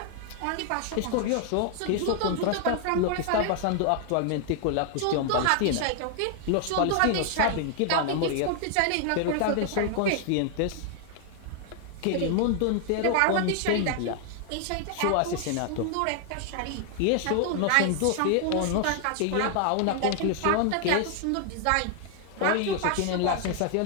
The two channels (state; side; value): different; both; correlation 0.00